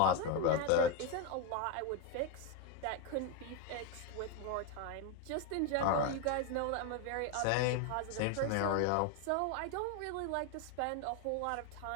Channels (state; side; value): different; both; correlation 0.02